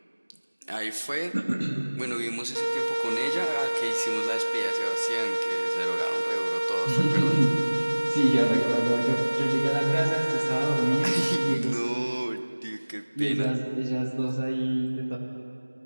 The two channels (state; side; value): inverted; both; correlation -1.00